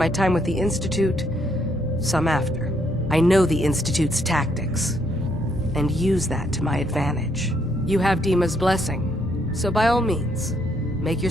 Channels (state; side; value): normal; both; correlation 0.72